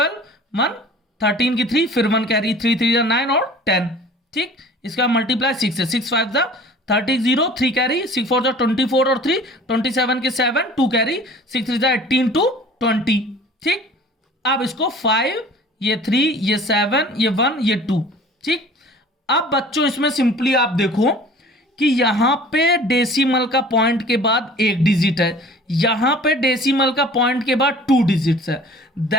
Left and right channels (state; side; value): normal; both; correlation 0.46